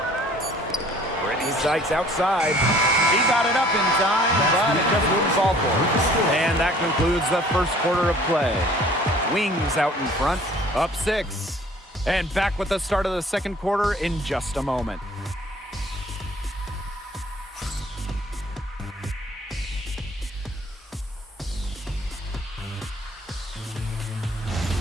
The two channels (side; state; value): both; normal; correlation 0.53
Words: Brittany Sykes outside. He got it up in time, but it just wouldn't fall for her. And that concludes the first quarter of play. Wings out in front, up 6. And back with the start of the second quarter in just a moment.